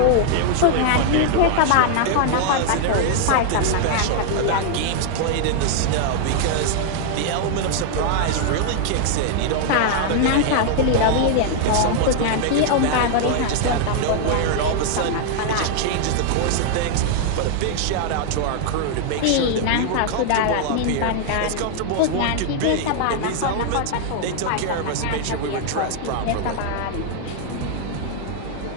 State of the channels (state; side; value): different; both; correlation 0.00